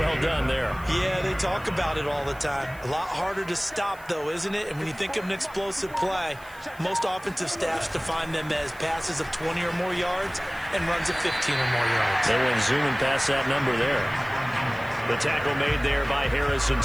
well done there. Yeah, they talk about it all the time. A lot harder to stop, though, isn't it? And when you think of an explosive play, most offensive staffs define them as passes of 20 or more yards and runs of 15 or more yards. They went zooming past that number there. The tackle made there by Harrison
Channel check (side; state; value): right; noise; hiss, 24 dB below the sound